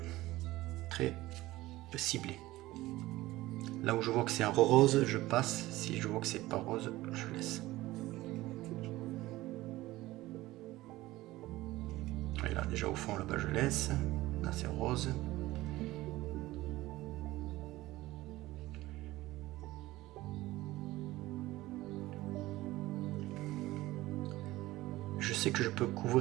ciblé. Là où je vois que c'est un rose, je passe. Si je vois que c'est pas rose, je laisse. Et là, déjà au fond, là-bas, je laisse. Là, c'est rose. Je sais que je peux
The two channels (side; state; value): left; quieter; 17.7 dB